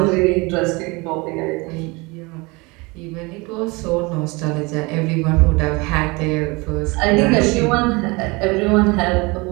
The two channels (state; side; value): quieter; left; 25.8 dB